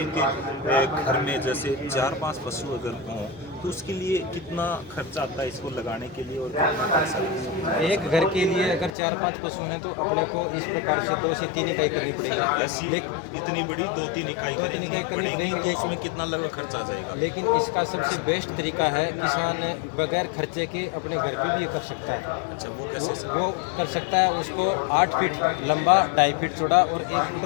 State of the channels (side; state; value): right; drops out; at 9.0 s